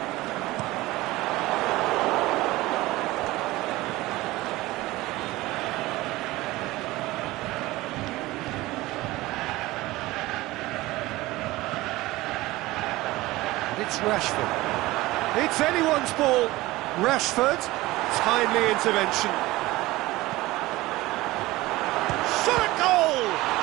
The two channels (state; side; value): quieter; left; 19.0 dB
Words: It's Rashford. It's anyone's ball. Rashford, timely intervention. Shot a goal!